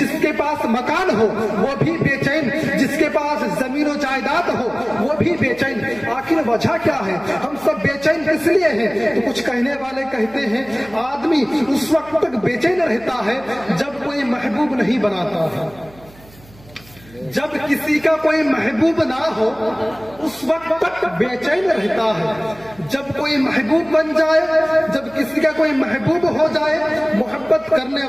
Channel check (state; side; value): noise; right; hum, 24 dB below the sound